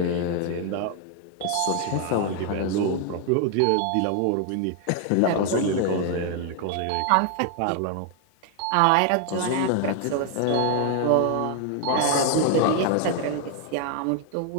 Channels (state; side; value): different; both; correlation 0.00